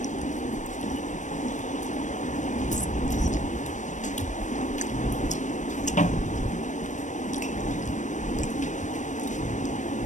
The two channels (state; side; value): late; right; 0.35 ms